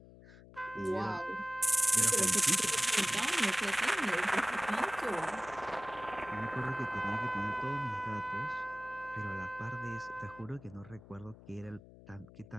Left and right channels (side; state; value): left; noise; hum, 20 dB below the sound